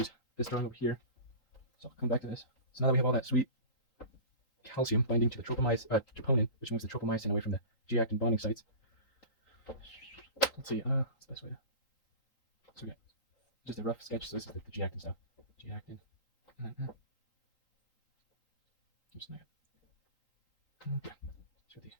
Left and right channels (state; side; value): late; right; 3.8 ms